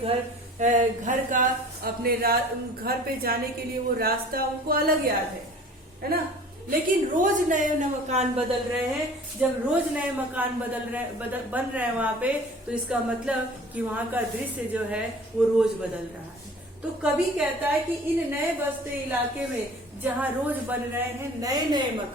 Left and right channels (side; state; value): both; normal; correlation 0.46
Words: का, अपने घर पे जाने के लिए वो रास्ता उनको अलग याद है ना। लेकिन रोज नए मकान बदल रहे हैं, जब रोज नए मकान बन रहे हैं वहां पे, तो इसका मतलब कि वहां का दृश्य जो है वो रोज बदल रहा है। तो कवि कहता है कि इन नए बसते इलाके में जहाँ रोज बन रहे हैं नए नए